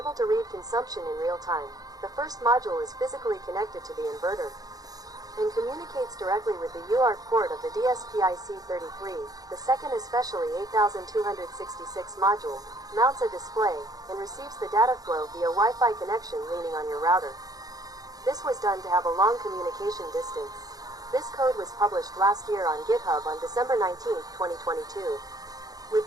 to read consumption in real time. The first module is physically connected to the inverter and communicates directly with the UART port of the SPIC33. The second, especially 8266 module, mounts a display and receives the data flow via Wi-Fi connection leaning on your router. This was done to have a long communication distance. This code was published last year on GitHub on December 19, 2022. With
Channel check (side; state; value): left; late; 0.18 ms